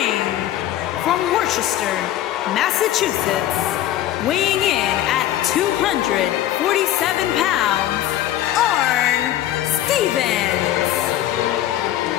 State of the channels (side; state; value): right; quieter; 13.0 dB